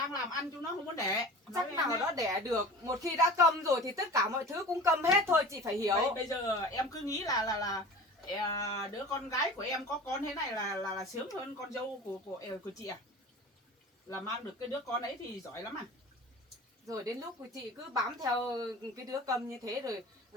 làm ăn, chúng nó không muốn đẻ. Nói Chắc với em nào thế. đó đẻ được. Một khi đã câm rồi thì tất cả mọi thứ cũng câm hết thôi, chị phải hiểu. Bây giờ em cứ nghĩ là đứa con gái của em có con thế này là sướng hơn con dâu của chị à? Là mang được cái đứa con ấy thì giỏi lắm à? Rồi đến lúc chị cứ bám theo cái đứa câm như thế rồi,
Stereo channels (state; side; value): normal; both; correlation 0.37